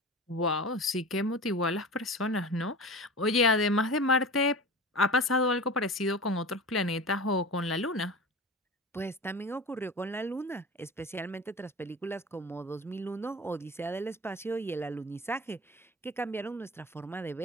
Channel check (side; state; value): both; normal; correlation 0.33